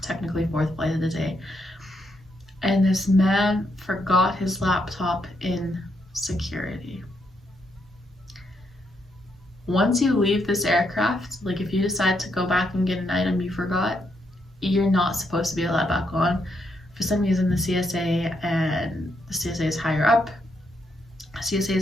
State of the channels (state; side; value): normal; both; correlation 0.78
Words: technically 4th flight of the day. And this man forgot his laptop in security. Once you leave this aircraft, like if you decide to go back and get an item you forgot, you're not supposed to be allowed back on. For some reason, the CSA, and the CSA is higher up. CSA